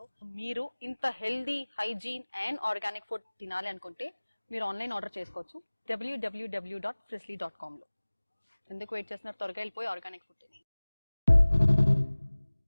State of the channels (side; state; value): both; inverted; correlation -1.00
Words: మీరు ఇంత healthy, hygiene and organic food తినాలి అనుకుంటే మీరు ఆన్లైన్ ఆర్డర్ చేసుకోవచ్చు www.frizzly.com లో. ఎందుకు వెయిట్ చేస్తున్నారు? త్వరగా వెళ్ళిపోయి ఆర్గానిక్ ఫుడ్ తిని.